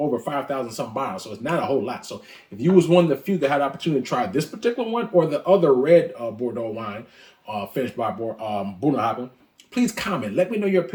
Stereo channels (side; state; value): both; identical; correlation 1.00